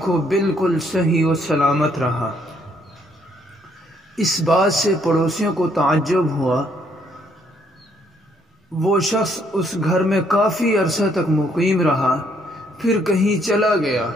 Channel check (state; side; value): normal; both; correlation 0.69